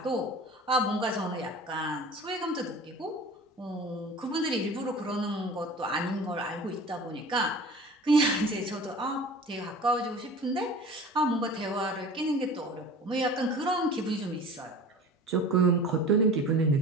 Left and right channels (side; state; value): both; normal; correlation 0.39